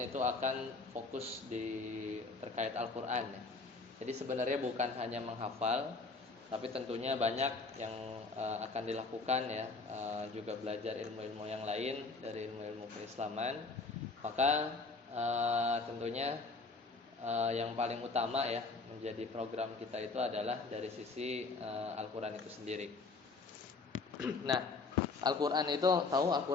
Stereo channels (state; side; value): quieter; right; 3.9 dB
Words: itu akan fokus di terkait Al-Qur'an, ya. Jadi sebenarnya bukan hanya menghafal, tapi tentunya banyak yang akan dilakukan, ya, juga belajar ilmu-ilmu yang lain dari ilmu-ilmu keislaman. Maka tentunya yang paling utama, ya, menjadi program kita itu adalah dari sisi Al-Qur'an itu sendiri. Nah, Al-Qur'an itu, tahu